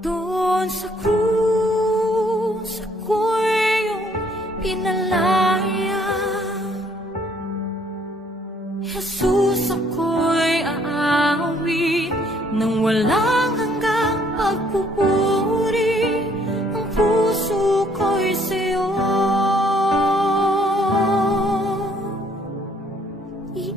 doon sa krus ako'y iyong pinalaya. Jesus, ako'y aawit nang walang hanggang pagpupuri, ang puso ko'y sa'yo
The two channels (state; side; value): normal; both; correlation 0.65